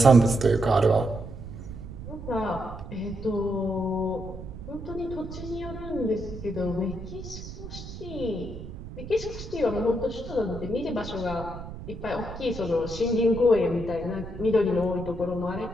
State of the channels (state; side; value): noise; right; rumble, 11 dB below the sound